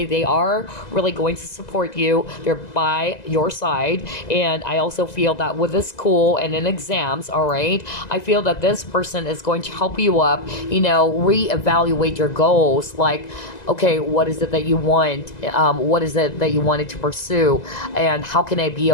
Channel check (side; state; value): right; late; 1.9 ms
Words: they are really going to support you. They're by your side. And I also feel that with this school and in exams, all right, I feel that this person is going to help you up, reevaluate your goals. Like, okay, what is it that you want? What is it that you wanted to pursue? And how can I be